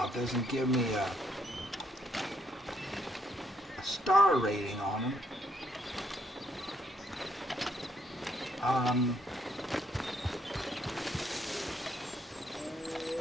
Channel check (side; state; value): both; normal; correlation 0.71